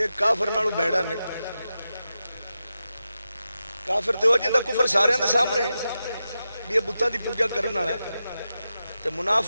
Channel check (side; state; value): both; inverted; correlation -0.90